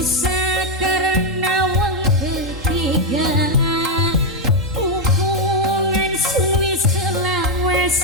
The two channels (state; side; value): normal; both; correlation 0.02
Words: karena wong ketiga. Hubungan suwi selawas